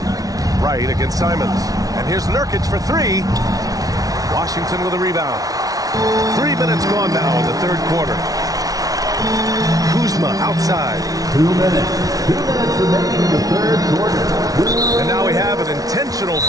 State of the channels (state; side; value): late; left; 0.18 ms